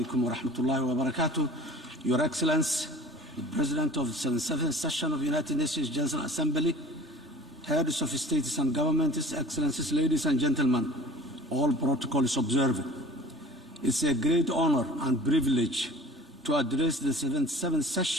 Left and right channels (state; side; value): normal; both; correlation 0.43